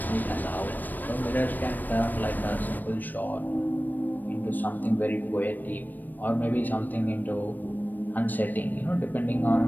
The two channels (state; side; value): late; right; 0.088 ms